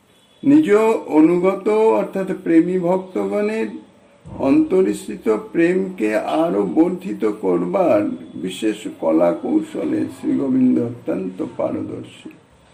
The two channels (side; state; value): both; identical; correlation 1.00